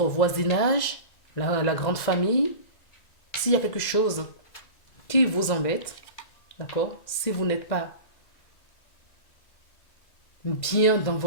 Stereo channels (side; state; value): right; late; 2.0 ms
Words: voisinage, la grande famille, s'il y a quelque chose qui vous embête, d'accord, si vous n'êtes pas bien dans